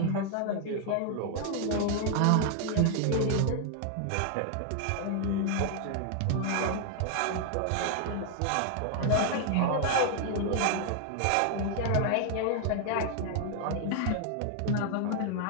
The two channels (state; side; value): different; both; correlation 0.00